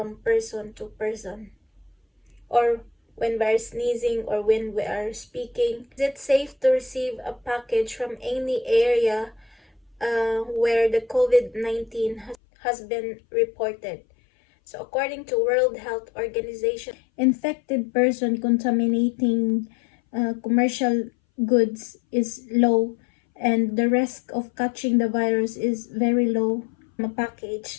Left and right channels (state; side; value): drops out; right; at 12.4 s